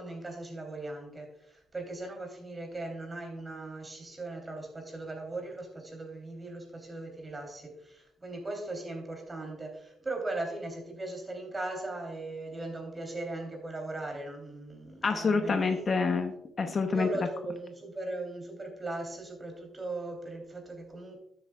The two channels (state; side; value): normal; both; correlation 0.83